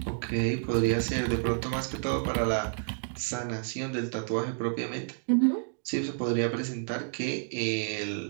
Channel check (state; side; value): silent; left; digital silence